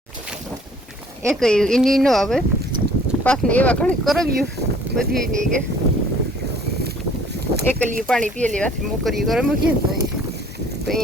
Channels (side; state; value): both; normal; correlation 0.55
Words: એક એની નો આવે પાછને એવા ઘણી કરવ્યું બધી એની કે એકલી પાણી પીએ લેવાથી મોકરી કરે મૂકીએ ને તો